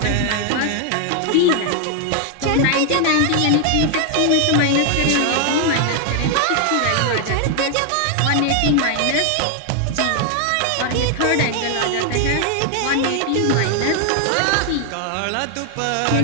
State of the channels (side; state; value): both; different; correlation 0.00